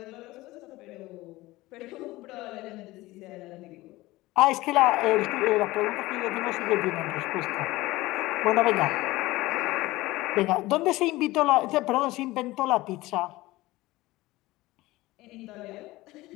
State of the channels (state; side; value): quieter; right; 19.1 dB